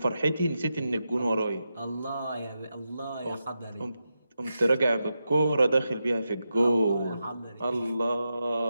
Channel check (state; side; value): inverted; both; correlation -0.88